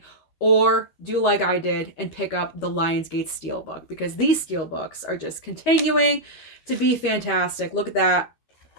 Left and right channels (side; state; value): right; late; 13 ms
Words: or do like I did and pick up the Lionsgate Steelbook, because these Steelbooks are just continuing to be fantastic. Look at that.